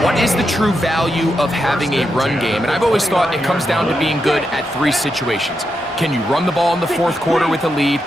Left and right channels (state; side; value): normal; both; correlation 0.85